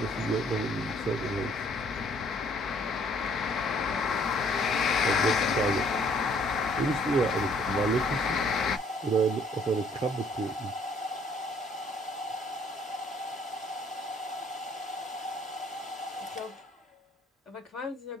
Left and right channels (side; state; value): both; normal; correlation 0.61